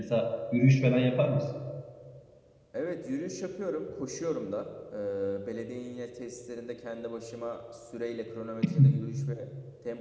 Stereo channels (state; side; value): identical; both; correlation 1.00